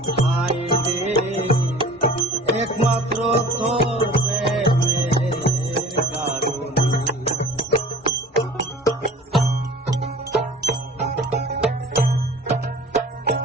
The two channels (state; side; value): normal; both; correlation 0.44